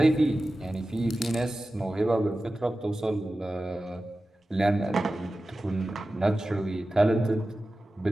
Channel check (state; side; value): normal; both; correlation 0.95